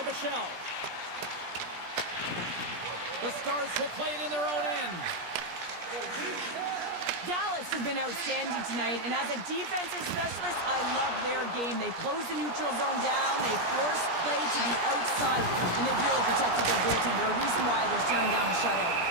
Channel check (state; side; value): late; left; 17 ms